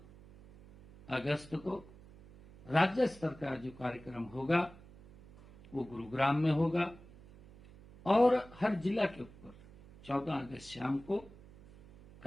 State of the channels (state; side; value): noise; right; hum, 21 dB below the sound